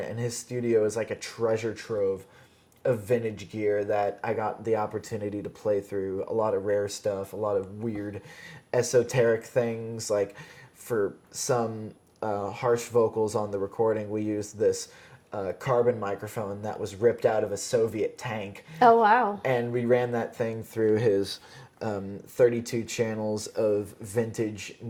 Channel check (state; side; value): identical; both; correlation 1.00